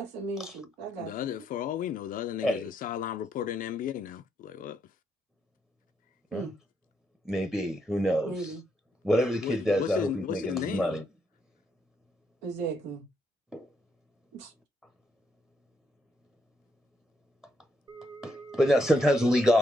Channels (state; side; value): normal; both; correlation 0.76